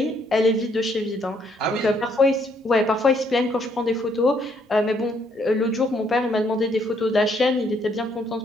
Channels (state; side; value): normal; both; correlation 0.69